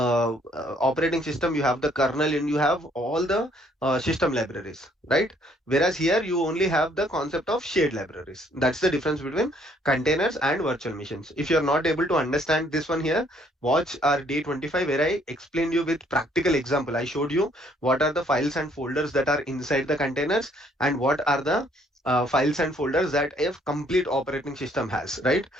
system. You have the kernel and you have all the system libraries, right? Whereas here you only have the concept of shared libraries. That's the difference between containers and virtual machines. If you're not able to understand this one here, watch our day 25 where I explained you with practical example. I showed you what are the files and folders that are inside the containers and what are the files and folders that a complete operating system has, right?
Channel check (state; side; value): normal; both; correlation 0.64